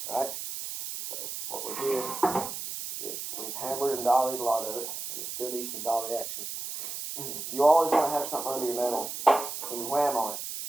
right? So what we did is we've hammered and dollied a lot of it, and it still needs some dolly action. You always want to have something under your metal when you wham on it.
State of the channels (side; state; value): right; noise; hiss, 6 dB below the sound